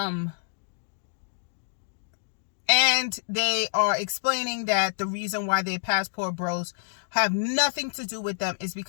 And they are explaining that the reason why their passport bros have nothing to do with them is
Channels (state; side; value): silent; right; digital silence